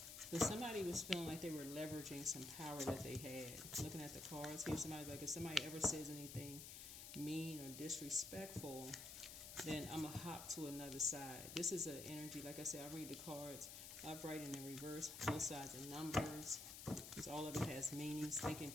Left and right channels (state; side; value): noise; left; hiss, 9 dB below the sound